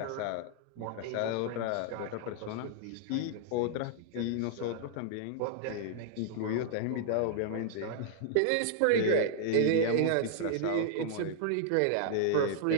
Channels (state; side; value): different; both; correlation -0.01